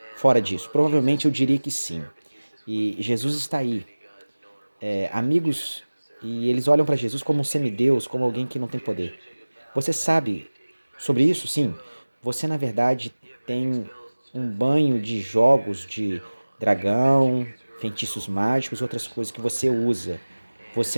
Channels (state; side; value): inverted; both; correlation -1.00